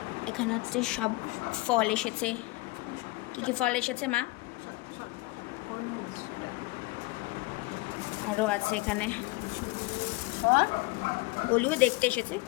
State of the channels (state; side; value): quieter; right; 22.0 dB